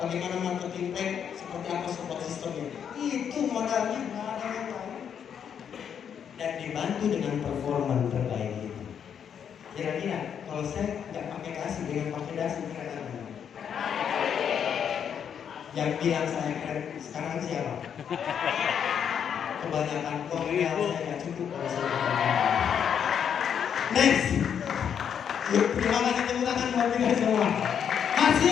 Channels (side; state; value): right; quieter; 8.1 dB